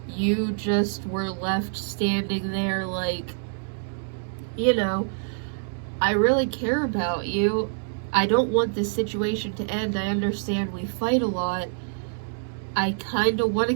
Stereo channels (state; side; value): silent; left; digital silence